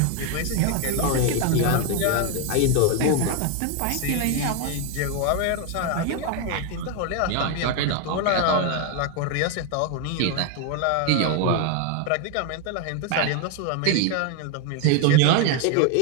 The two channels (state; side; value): different; both; correlation 0.01